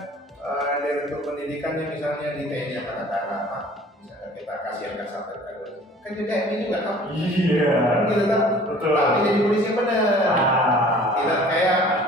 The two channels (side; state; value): both; normal; correlation 0.49